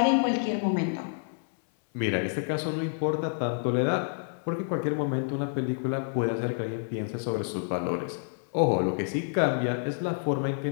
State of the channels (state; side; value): silent; right; 59 dB below the other